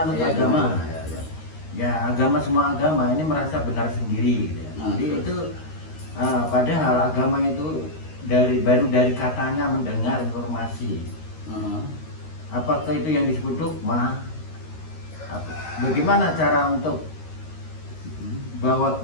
Ya, agama. ya. Ya, agama, semua agama ini merasa benar sendiri gitu ya. Jadi itu padahal agama itu baru dari katanya mendengar informasi. Apakah itu yang disebut dogma? Bagaimana cara untuk bawa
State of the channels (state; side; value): late; right; 13 ms